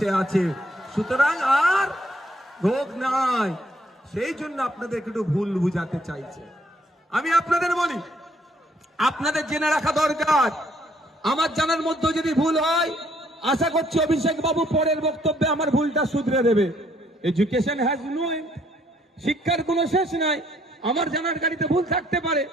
আছে। সুতরাং আর রোগ নাই। সেই জন্য আপনাদের একটু ভুল বুঝাতে চাইছে। আমি আপনাদের বলি, আপনাদের জেনে রাখা দরকার। আমার জানার মধ্যে যদি ভুল হয়, আশা করছি অভিষেক বাবু পরের বক্তব্যে আমার ভুলটা শুধরে দেবে। এডুকেশন হ্যাজ নো এন্ড, শিক্ষার কোনো শেষ নাই। আমার জানার গাড়িতে ভুল থাকতে পারে,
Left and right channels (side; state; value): both; normal; correlation 0.67